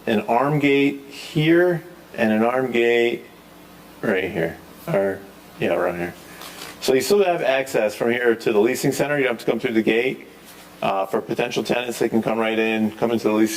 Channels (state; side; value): identical; both; correlation 1.00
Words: an arm gate here and an arm gate right here, or yeah, around here. So you still have access from here to the leasing center. You don't have to come through the gate. For potential tenants, they can come right in, come into the